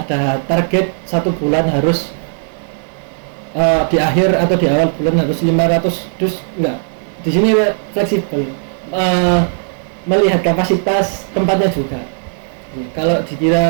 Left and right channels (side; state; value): left; silent; digital silence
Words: ada target 1 bulan harus di akhir atau di awal bulan harus 500 dus, enggak. Di sini fleksibel. Melihat kapasitas tempatnya juga. Kalau